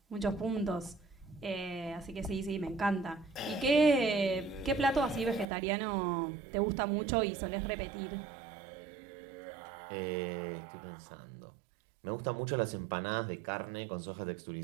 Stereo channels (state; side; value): drops out; left; at 5.5 s